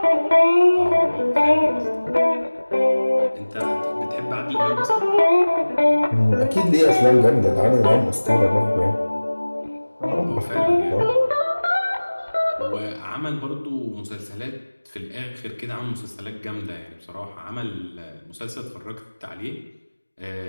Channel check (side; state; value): both; inverted; correlation -1.00